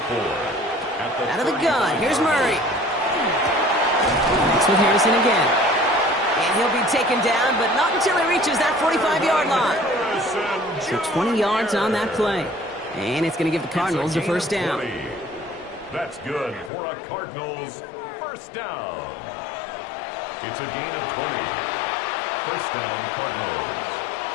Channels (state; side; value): drops out; right; at 16.7 s